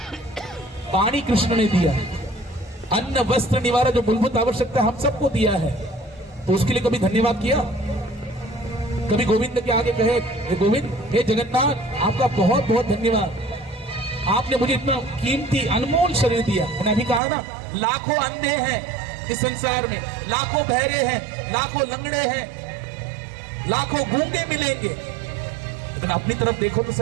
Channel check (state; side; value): drops out; left; at 17.2 s